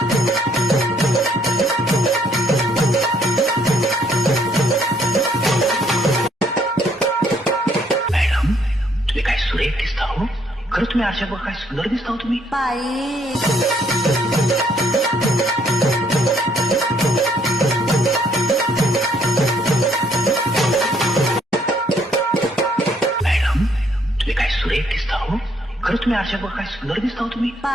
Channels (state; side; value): normal; both; correlation 0.68